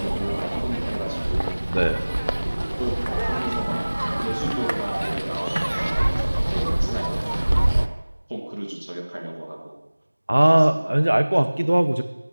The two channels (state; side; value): inverted; both; correlation -1.00